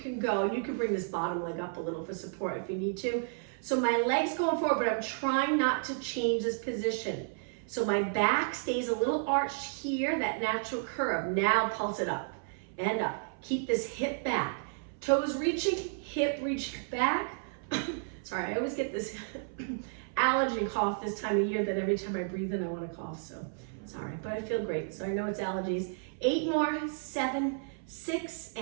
go. And you can bring this bottom leg up a little for support if you need to. So my leg's going forward, but I'm trying not to change this position. So my back stays a little arched here, that natural curve. Now pulse it up and up. Keep this hip back. Toes reaching, hip reach back. Sorry, I always get this allergy cough this time of year that every time I breathe in I want to cough. So sorry, but I feel great. So I know it's allergies. 8 more, 7, 6,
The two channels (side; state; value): left; silent; 56 dB below the other